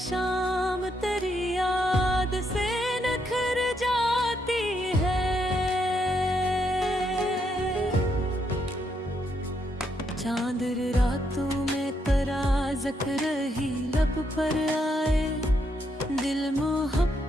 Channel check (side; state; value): both; normal; correlation 0.77